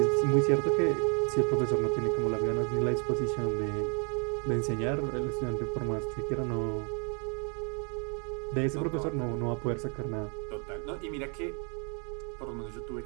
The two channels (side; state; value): left; quieter; 37.6 dB